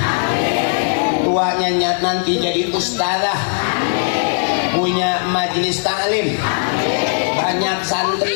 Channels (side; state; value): right; silent; digital silence